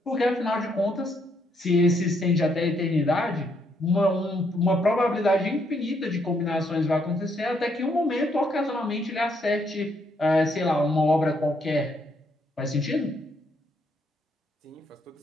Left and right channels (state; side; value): normal; both; correlation 0.73